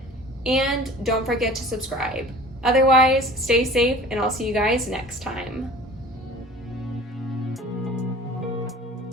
And don't forget to subscribe. Otherwise, stay safe and I'll see you guys next time.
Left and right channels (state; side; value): normal; both; correlation 0.43